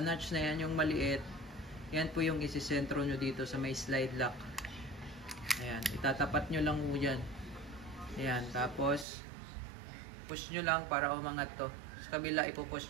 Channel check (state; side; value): drops out; left; at 9.1 s